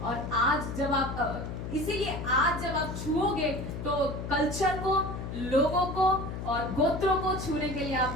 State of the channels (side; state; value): left; noise; hum, 6 dB below the sound